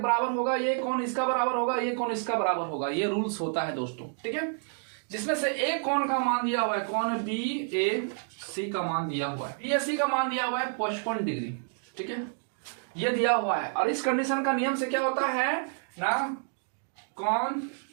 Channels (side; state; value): left; silent; 58 dB below the other